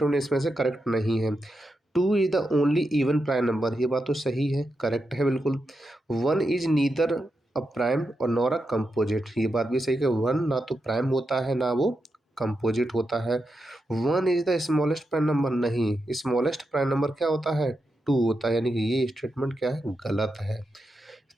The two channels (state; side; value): normal; both; correlation 0.87